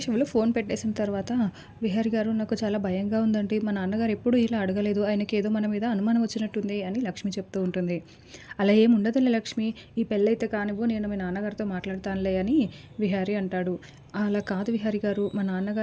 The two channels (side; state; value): both; identical; correlation 1.00